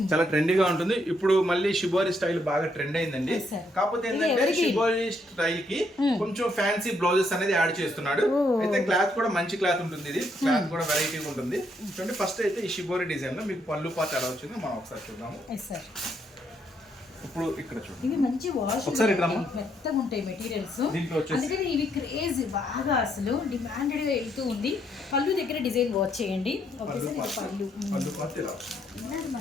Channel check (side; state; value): both; normal; correlation 0.74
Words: చాలా ట్రెండీగా ఉంటుంది. ఇప్పుడు మళ్ళీ షిబోరి స్టైల్ బాగా ట్రెండ్ అయిందండి. కాకపోతే ఏంటంటే షిబోరి స్టైల్ కి కొంచెం ఫ్యాన్సీ బ్లౌజెస్ అనేది యాడ్ చేస్తున్నాడు. అయితే క్లాత్ కూడా మంచి క్లాత్ ఉంటుంది, ఇది క్లాత్ కూడా వెరైటీ ఉంటుంది. చూడండి ఫస్ట్ అయితే ఈ షిబోరి డిజైన్ లో మీకు పళ్ళు పార్ట్ ఎలా వచ్చిందో మనం ఒకసారి చూద్దాము. ఇప్పుడు ఇక్కడ చూడండి, ఇవి మంచి వాష్ మెత్తగా ఉంటాయి మెటీరియల్స్, అందుకని ఇవి క్రేజ్ బాగా అసలు డిమాండెడ్ గా వెళ్తూ ఉంది. పళ్ళు దగ్గర డిజైన్ వాచ్ చేయండి. పళ్ళు పార్ట్ ఇలా